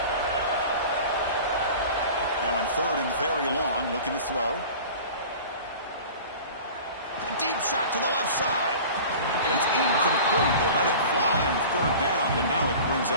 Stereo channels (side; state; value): both; inverted; correlation -0.40